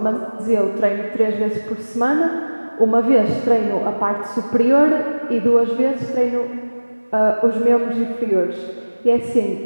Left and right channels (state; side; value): inverted; both; correlation -1.00